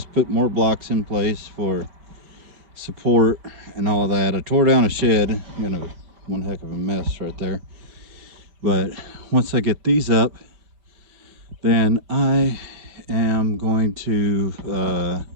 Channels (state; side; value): late; left; 5.1 ms